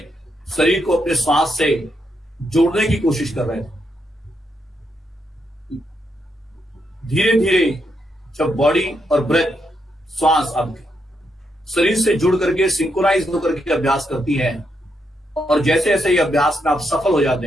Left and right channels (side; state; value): both; normal; correlation 0.80